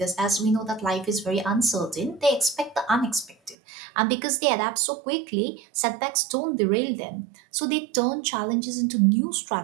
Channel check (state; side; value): drops out; left; at 3.6 s